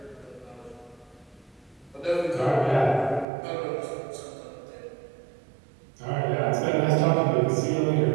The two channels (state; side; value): drops out; left; at 3.2 s